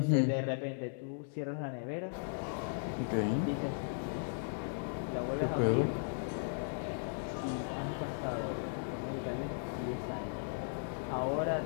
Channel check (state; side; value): silent; right; digital silence